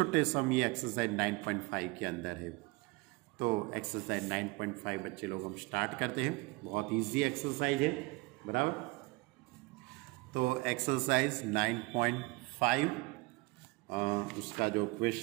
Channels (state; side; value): quieter; left; 24.0 dB